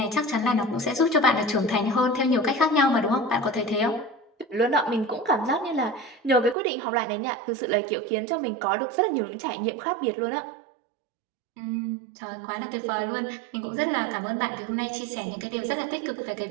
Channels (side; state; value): left; drops out; at 6.6 s